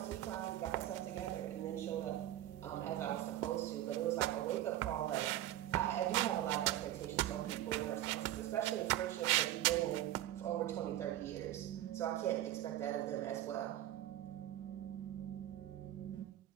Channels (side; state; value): left; quieter; 13.6 dB